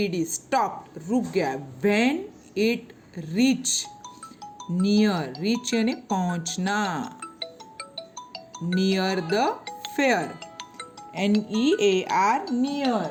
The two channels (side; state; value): both; identical; correlation 1.00